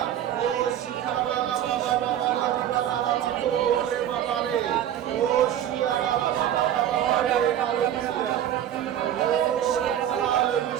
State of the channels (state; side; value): quieter; left; 10.8 dB